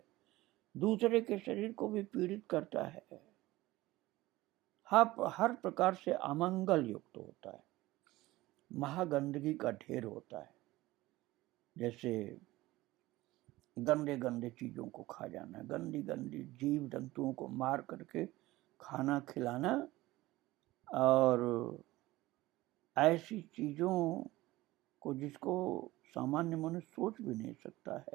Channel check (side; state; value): left; quieter; 18.3 dB